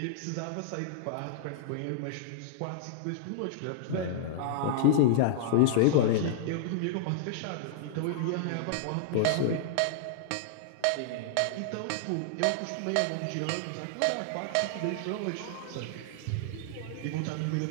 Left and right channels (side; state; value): both; different; correlation -0.01